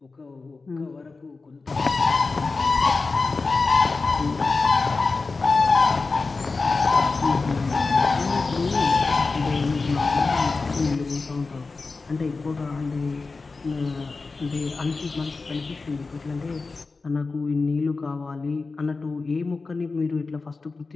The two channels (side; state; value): right; quieter; 4.0 dB